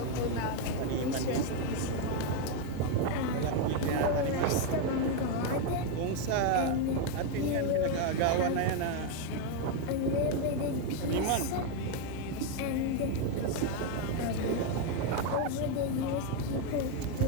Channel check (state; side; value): different; both; correlation 0.02